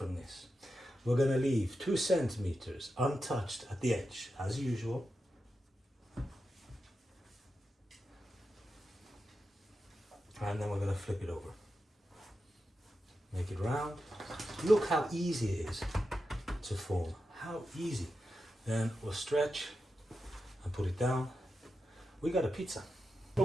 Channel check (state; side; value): normal; both; correlation 0.89